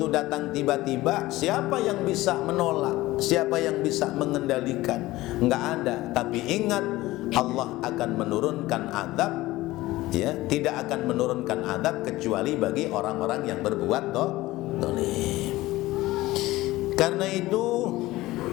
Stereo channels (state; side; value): quieter; right; 18.0 dB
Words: datang tiba-tiba, siapa yang bisa menolak? Siapa yang bisa mengendalikan? Enggak ada. Tapi ingat, Allah akan menurunkan azab, ya, tidak akan menurunkan azab kecuali bagi orang-orang yang berbuat zalim. Karena itu,